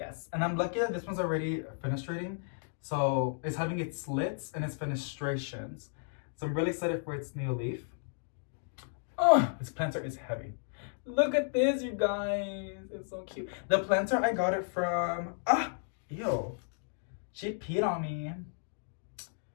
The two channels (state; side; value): silent; right; digital silence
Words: And I'm lucky that this one's already fenestrating. So, it's having its slits and its fenestrations. So, I'm really excited for its new leaf. Oh, this planter is heavy. Look at this, you guys. It's so cute. The planter, I got it from... Ew. She peed on me.